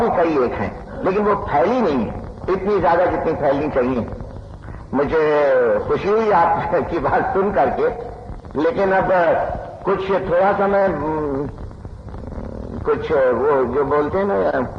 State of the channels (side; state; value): both; identical; correlation 1.00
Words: कई एक हैं, लेकिन वो फैली नहीं है इतनी ज्यादा जितनी फैलनी चाहिए। मुझे खुशी हुई आपकी बात सुन करके, लेकिन अब कुछ थोड़ा सा मैं कुछ वो जो बोलते हैं ना,